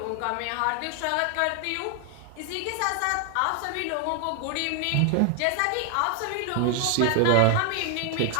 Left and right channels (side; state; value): both; different; correlation 0.01